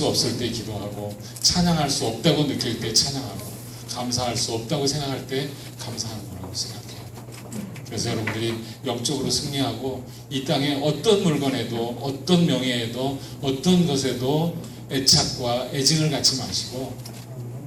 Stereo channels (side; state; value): both; identical; correlation 1.00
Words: 없을 때 기도하고 찬양할 수 없다고 느낄 때 찬양하고 감사할 수 없다고 생각할 때 감사하는 거라고 생각해요. 그래서 여러분들이 영적으로 승리하고 이 땅에 어떤 물건에도 어떤 명예에도 어떤 것에도 애착과 애증을 갖지 마시고